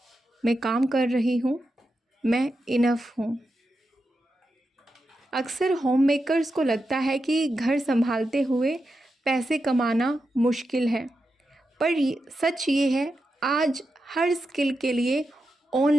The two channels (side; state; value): both; normal; correlation 0.88